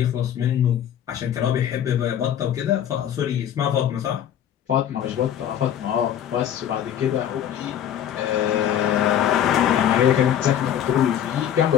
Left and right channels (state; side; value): quieter; right; 10.1 dB